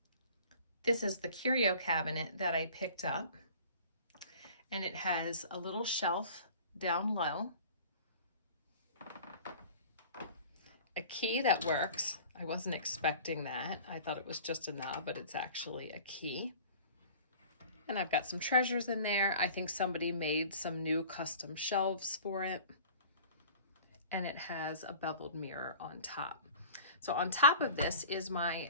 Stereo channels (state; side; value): inverted; both; correlation -0.44